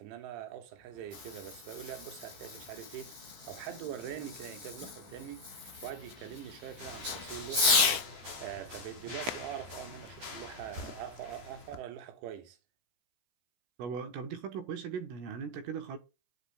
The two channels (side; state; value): left; late; 16 ms